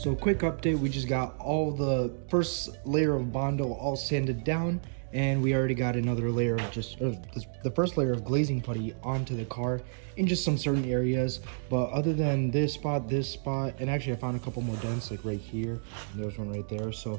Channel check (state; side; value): silent; left; digital silence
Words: So quick update, we just got all the first layer of Bondo all sanded down, and we already got another layer of the first layer of glazing putty onto the car in just some certain areas. But other than this spot, and actually I found a couple more dents like right here, and there's one right there.